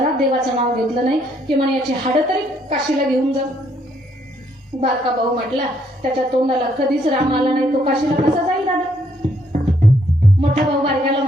देवाचं नाव घेतलं नाही की म्हणे याची हाडं तरी काशीला घेऊन जा. बारका भाऊ म्हटला त्याच्या तोंडाला कधीच राम आला नाही, तो काशीला कसा जाईल दादा. मोठा भाऊ बारक्याला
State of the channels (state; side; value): normal; both; correlation 0.70